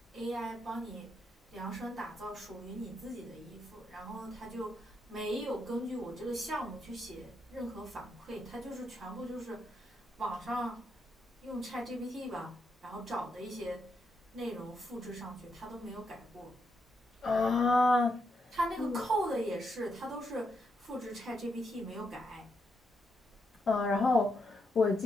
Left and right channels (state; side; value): normal; both; correlation 0.80